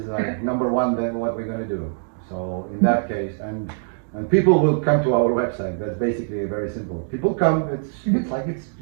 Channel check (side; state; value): left; silent; digital silence